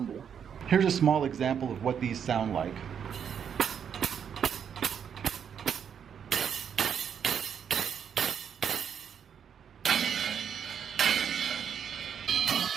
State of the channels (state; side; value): quieter; left; 7.9 dB